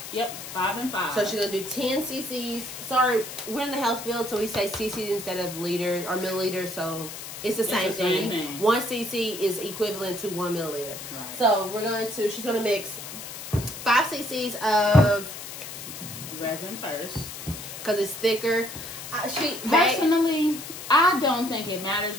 Yep, 5 and 5. So she's going to do 10 cc's. Sorry, we're in the health field, so we say cc's instead of liters or milliliters. So it's the same thing. 1 cc is equivalent to 1 milliliter. Right. So she's going to mix 5 cc's of resin first because it's thicker. Personally, I don't think it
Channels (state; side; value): noise; left; hiss, 10 dB below the sound